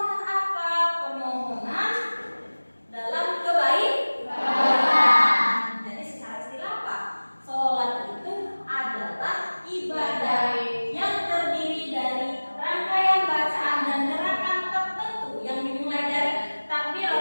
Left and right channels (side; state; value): both; inverted; correlation -1.00